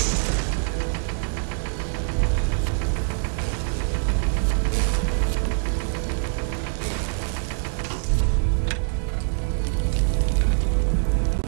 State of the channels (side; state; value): left; silent; 62 dB below the other